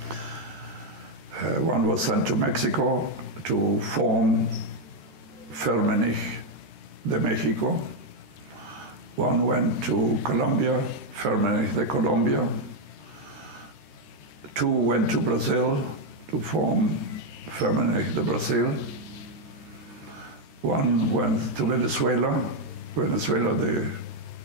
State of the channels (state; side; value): late; left; 13 ms